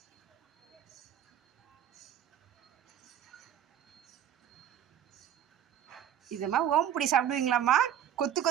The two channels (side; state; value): left; quieter; 10.1 dB